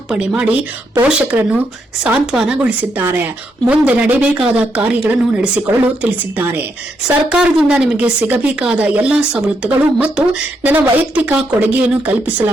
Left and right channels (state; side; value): normal; both; correlation 0.79